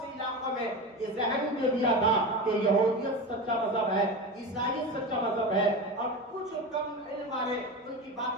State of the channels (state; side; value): normal; both; correlation 0.24